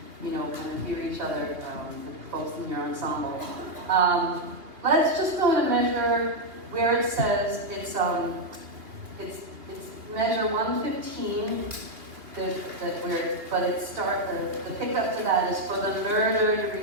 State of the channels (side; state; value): left; late; 3.0 ms